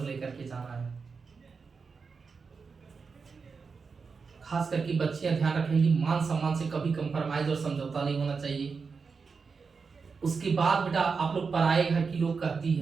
लेकर के जाना है। खास करके बच्चियां ध्यान रखें कि मान सम्मान से कभी कंप्रोमाइज और समझौता नहीं होना चाहिए। उसके बाद बेटा आप लोग पराए घर की लोग कहती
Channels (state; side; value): quieter; left; 5.1 dB